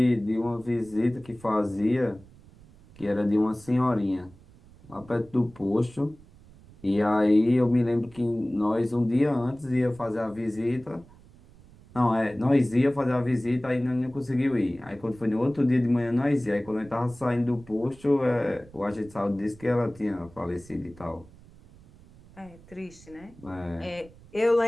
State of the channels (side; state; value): right; noise; rumble, 23 dB below the sound